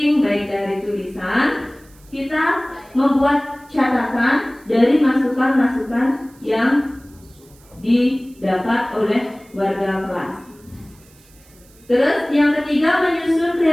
baik dari tulisan, kita membuat catatan dari masukan-masukan yang didapat oleh warga kelas. Terus yang ketiga, menyusun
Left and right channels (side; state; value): right; noise; hiss, 28 dB below the sound